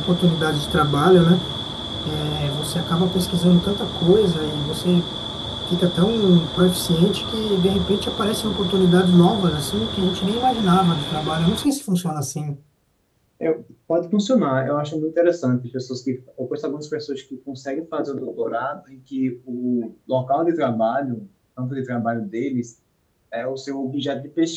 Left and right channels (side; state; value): both; identical; correlation 1.00